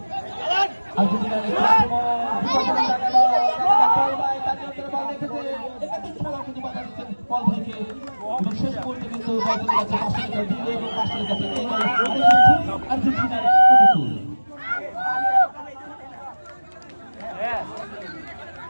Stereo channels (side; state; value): both; inverted; correlation -1.00